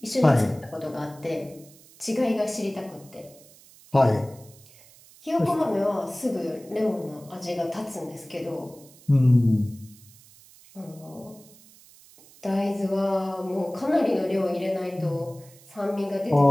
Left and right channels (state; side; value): noise; right; hiss, 24 dB below the sound